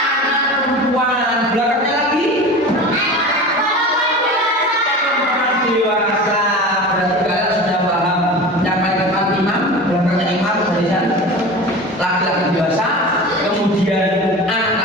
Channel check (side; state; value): both; normal; correlation 0.33